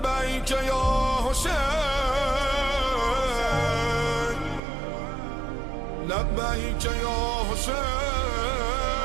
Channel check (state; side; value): drops out; left; at 4.6 s